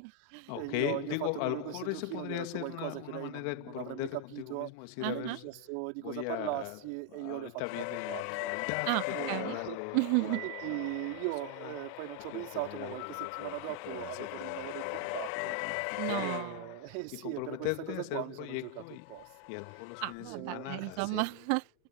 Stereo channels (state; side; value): different; both; correlation 0.00